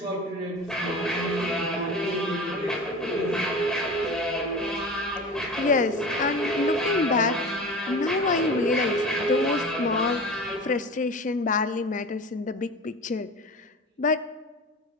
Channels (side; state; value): both; normal; correlation 0.33